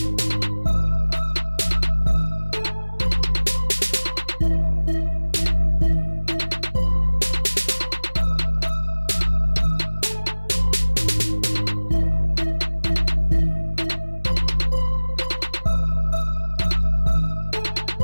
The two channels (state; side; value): inverted; both; correlation -1.00